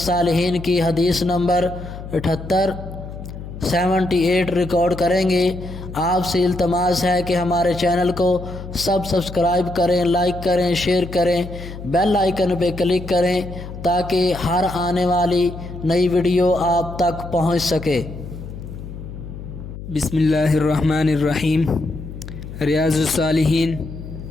کی حدیث نمبر 78 ریکارڈ کریں گے۔ آپ سے التماس ہے کہ ہمارے چینل کو سبسکرائب کریں، لائک کریں، شیئر کریں، بیل آئیکن پہ کلک کریں تاکہ ہر آنے والی نئی ویڈیو آپ تک پہنچ سکے۔ بسم اللہ الرحمن الرحیم۔ ریاض الصالحین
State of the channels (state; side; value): noise; left; hum, 11 dB below the sound